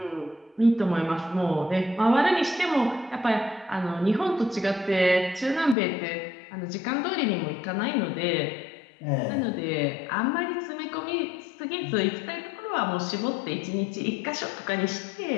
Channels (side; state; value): right; drops out; at 5.8 s